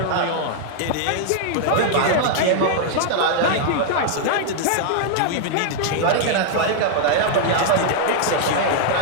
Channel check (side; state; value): both; different; correlation -0.01